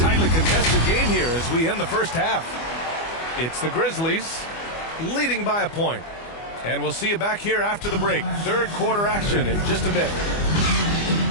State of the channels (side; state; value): right; late; 24 ms